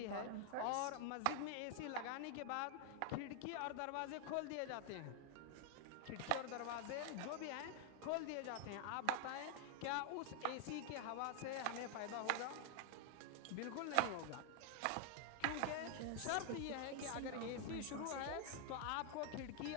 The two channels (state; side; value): different; both; correlation 0.00